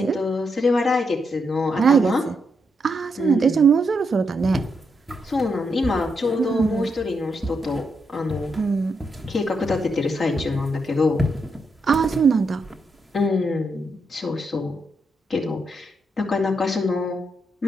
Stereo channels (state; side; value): normal; both; correlation 0.81